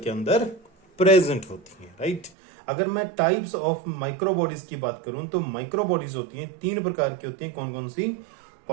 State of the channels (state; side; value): drops out; left; at 2.3 s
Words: अंदर प्रेजेंट होती हैं, राइट। अगर मैं टाइप्स ऑफ माइक्रो बॉडीज की बात करूं तो माइक्रो बॉडीज होती हैं, तीन प्रकार की होती हैं। कौन कौन सी?